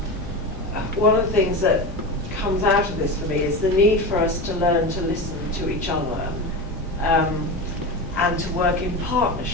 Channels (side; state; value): left; noise; rumble, 11 dB below the sound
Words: one of the things that comes out of this for me is the need for us to learn to listen to each other and to work in